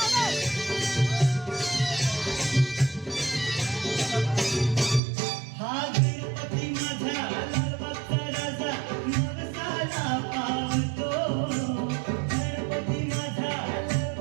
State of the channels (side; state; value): left; drops out; at 5.0 s